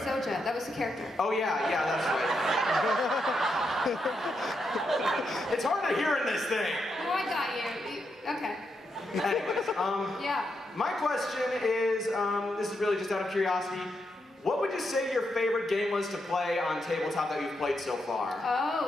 that was the character. Oh yeah, that's right. It's hard to hear in this thing. Oh, I got you. Okay. Anyways, yeah. My question is, this is really just out of curiosity. What would you say your favorite game was to play on tabletop that you've played so far? Oh,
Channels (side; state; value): both; normal; correlation 0.82